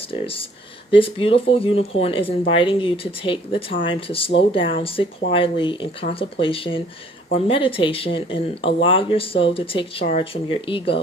This beautiful unicorn is inviting you to take the time to slow down, sit quietly in contemplation or meditation, and allow your soul to take charge from your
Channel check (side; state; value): both; normal; correlation 0.58